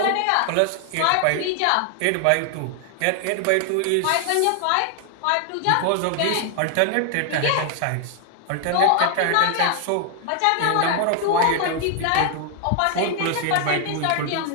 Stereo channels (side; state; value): both; different; correlation 0.00